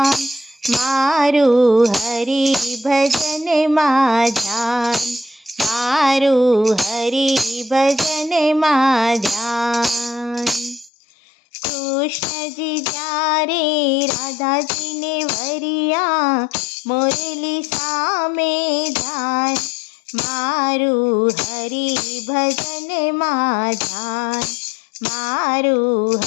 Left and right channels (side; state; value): right; drops out; at 10.9 s